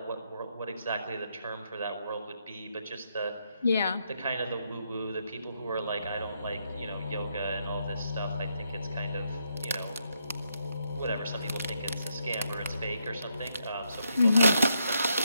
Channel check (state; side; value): inverted; both; correlation -0.78